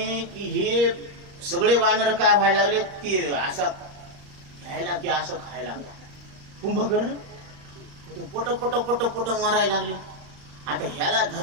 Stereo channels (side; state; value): left; late; 35 ms